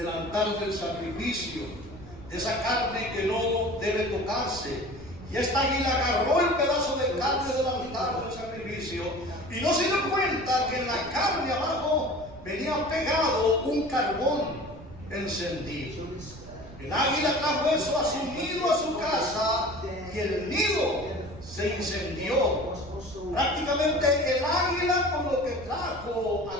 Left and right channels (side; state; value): right; noise; rumble, 17 dB below the sound